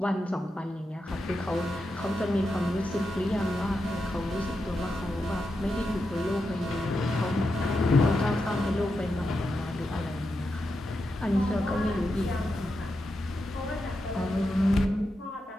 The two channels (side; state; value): both; normal; correlation 0.87